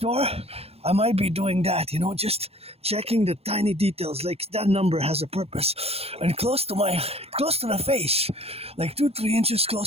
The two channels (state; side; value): late; left; 0.29 ms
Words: I might be doing that, just checking the tiny details, like that number has a purpose. And close to the face, like 2-3 inches